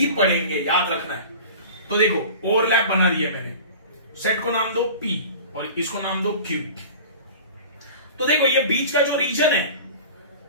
पड़ेंगे, याद रखना है। तो देखो ओवरलैप बना दिया मैंने, सेट को नाम दो P और इसको नाम दो Q। तो देखो ये बीच का जो रीजन है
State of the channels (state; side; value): inverted; both; correlation -0.38